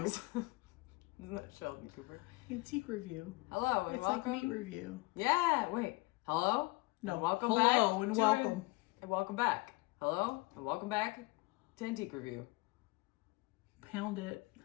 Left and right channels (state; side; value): quieter; right; 23.4 dB